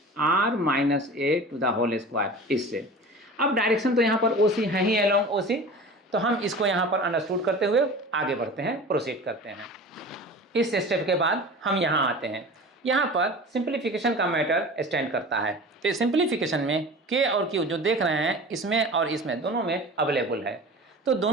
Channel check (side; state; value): both; normal; correlation 0.37